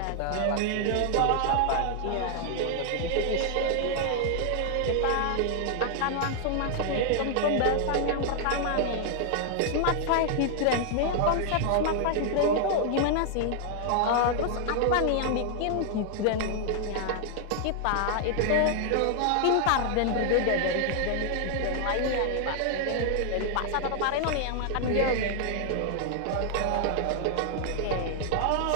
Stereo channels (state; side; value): different; both; correlation 0.00